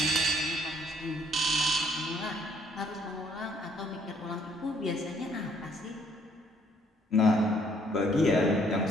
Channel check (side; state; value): both; normal; correlation 0.65